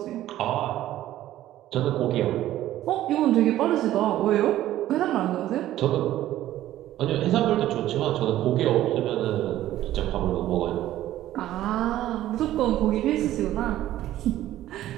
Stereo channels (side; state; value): left; quieter; 13.8 dB